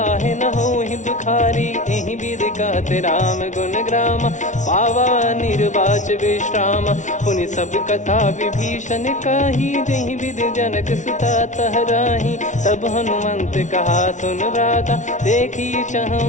न हो ही दुखारी एहि विध कहते राम गुण ग्राम पावा निर्वाच विश्राम पुनि सब कथा विभीषण काही जहि विध जनक सुता तहराही तब हनुमंत कहा सुन भ्राता देखी चहु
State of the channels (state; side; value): late; right; 0.36 ms